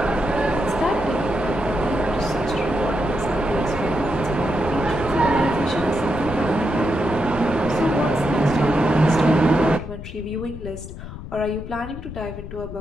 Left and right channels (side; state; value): left; noise; rumble, 11 dB below the sound